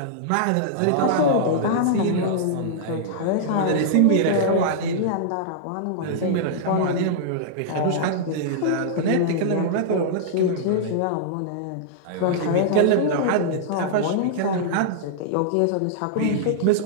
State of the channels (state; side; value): different; both; correlation -0.02